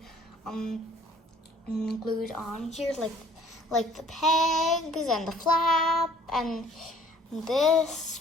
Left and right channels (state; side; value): normal; both; correlation 0.55